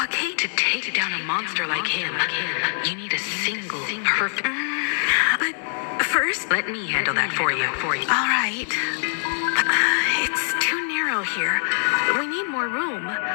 To take down a monster like him, you need a single perfect... But first... Let me handle that for you. All right. It's too narrow here. We need more room.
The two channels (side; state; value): right; silent; digital silence